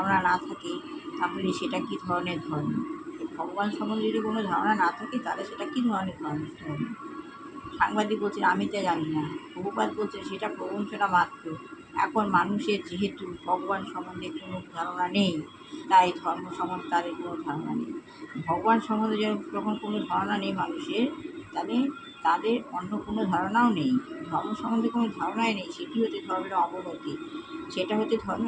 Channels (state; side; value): identical; both; correlation 1.00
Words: না থাকে তাহলে সেটা কী ধরনের ধর্ম? ভগবান সম্বন্ধে যদি কোনো ধারণা না থাকে তাহলে সেটা কী ধরনের ধর্ম? সাংবাদিক বলছে আমি তো জানি না, প্রভুপাদ বলছে সেটা প্রবঞ্চনা মাত্র। এখন মানুষের যেহেতু ভগবান সম্বন্ধে কোনো ধারণা নেই তাই ধর্ম সম্বন্ধে তাদের কোনো ধারণা নেই। ভগবান সম্বন্ধে যখন কোনো ধারণা নেই মানুষের, তাহলে তাদের অন্য কোনো ধারণাও নেই। ধর্ম সম্বন্ধে কোনো ধারণাই নেই, সেটি হচ্ছে ধর্মের অবনতি। সেটা হচ্ছে